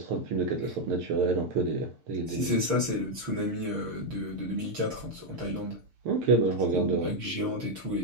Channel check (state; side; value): late; left; 6.7 ms